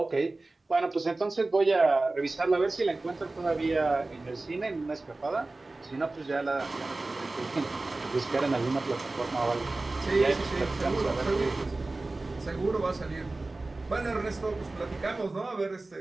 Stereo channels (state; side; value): quieter; left; 3.1 dB